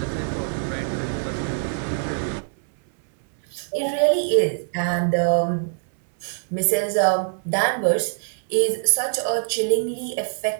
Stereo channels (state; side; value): silent; left; 61 dB below the other